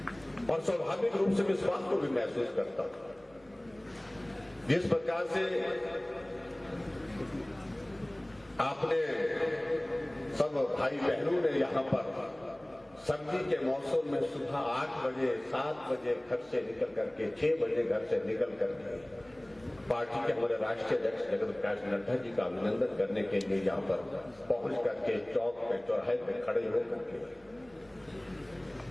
और स्वाभाविक रूप से इस बात को भी महसूस करता हूं, जिस प्रकार से आपने सब भाई बहनों ने यहां पर सर्दी के मौसम में सुबह 8 बजे 7 बजे घर से निकल करके 6 बजे घर से निकल करके पार्टी के हमारे राष्ट्रीय अध्यक्ष जगत प्रकाश नड्डा जी का अभिनंदन करने के लिए यहां पर पहुंच करके चौक पे, चौराहे पे खड़े होकर के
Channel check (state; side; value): noise; right; hum, 28 dB below the sound